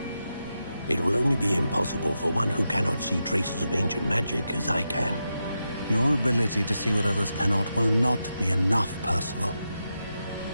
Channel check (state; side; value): inverted; both; correlation -0.88